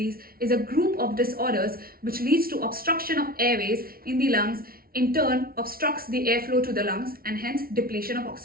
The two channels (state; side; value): late; left; 0.43 ms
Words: is a group of disorders which leads to obstruction of airways in the lungs, in turn obstructs the airflow to the lungs and hence depletion of